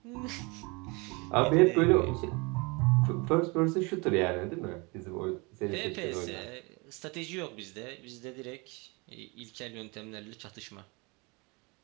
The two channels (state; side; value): quieter; left; 28.2 dB